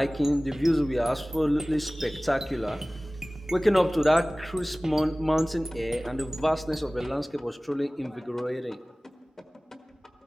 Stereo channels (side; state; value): both; normal; correlation 0.98